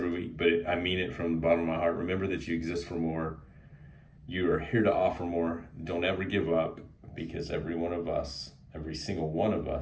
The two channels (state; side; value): identical; both; correlation 1.00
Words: week, but I mean it from the bottom of my heart. Remember that you exist for more. You are here to offer more. Don't ever give up, because every single one of